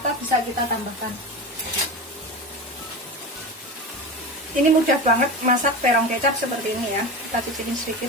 bisa kita tambahkan. Ini mudah banget masak terong kecap seperti ini ya. Kita cicipin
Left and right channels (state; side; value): normal; both; correlation 0.25